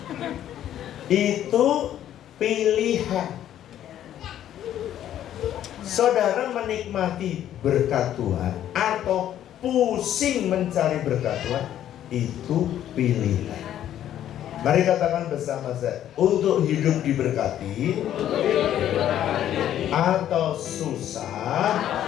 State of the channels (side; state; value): right; quieter; 11.3 dB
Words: Itu pilihan. Saudara menikmati berkat Tuhan atau pusing mencari berkat Tuhan, itu pilihan. Mari katakan bersama saya, untuk hidup diberkati atau susah